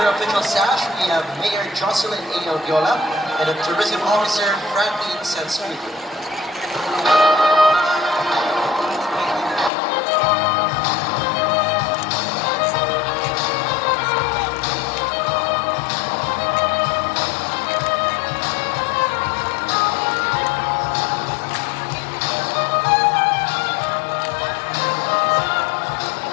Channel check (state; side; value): drops out; right; at 9.7 s